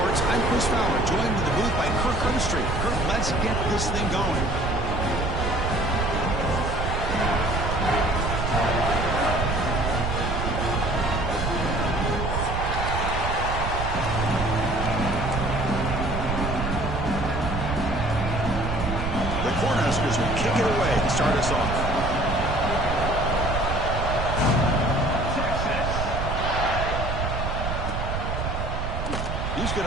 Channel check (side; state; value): right; noise; rumble, 2 dB below the sound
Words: I'm Chris Fowler, joined in the booth by Kirk Herbstreit. Kirk, let's get this thing going. Cornhuskers will kick it away to start us off. He's going